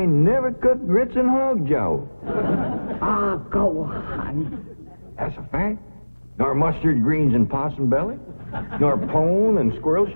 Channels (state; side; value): inverted; both; correlation -1.00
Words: never cooked grits and hog jowl. Ah, go on. That's a fact. Nor mustard greens and possum belly. Nor pone and squirrel